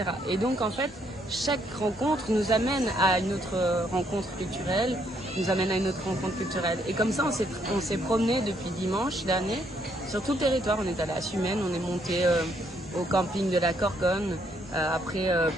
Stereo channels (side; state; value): both; normal; correlation 0.71